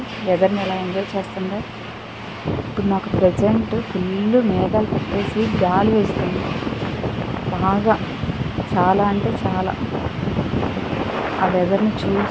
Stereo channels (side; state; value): both; identical; correlation 1.00